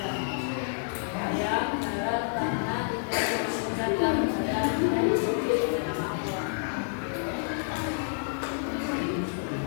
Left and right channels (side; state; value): right; silent; digital silence